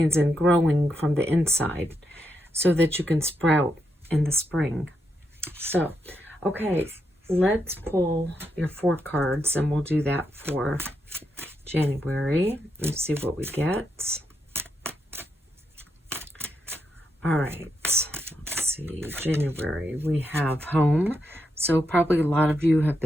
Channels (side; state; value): both; normal; correlation 0.82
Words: and growing from the inside so that you can sprout in the spring. So, okay, let's pull your 4 cards, and we'll do that for January. Let's see what we get. All right, let's see. January, we have home. So probably a lot of you have